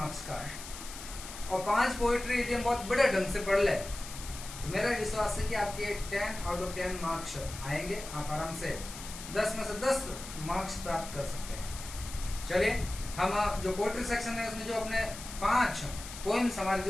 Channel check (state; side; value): noise; left; hiss, 12 dB below the sound